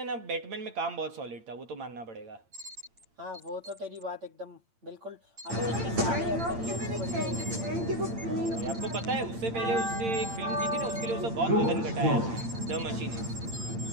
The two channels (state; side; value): late; left; 8.8 ms